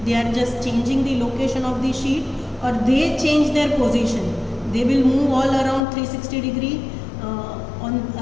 they are just changing the location of the sheet, or they change their position. They will move all around 360 degree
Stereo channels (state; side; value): drops out; right; at 5.9 s